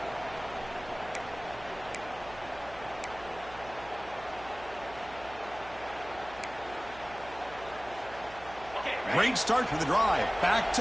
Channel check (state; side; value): noise; right; hum, 18 dB below the sound